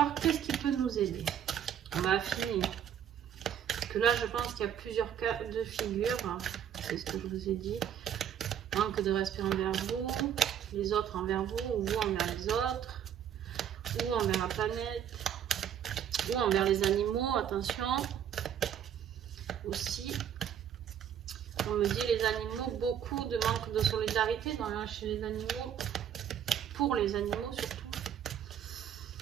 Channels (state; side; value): quieter; left; 9.3 dB